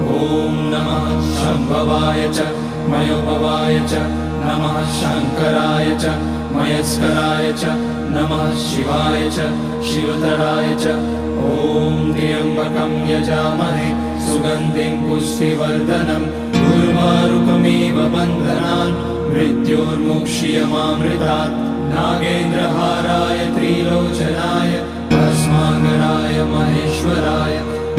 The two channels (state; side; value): identical; both; correlation 1.00